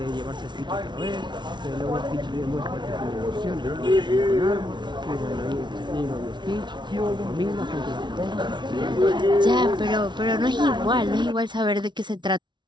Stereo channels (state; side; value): late; left; 0.22 ms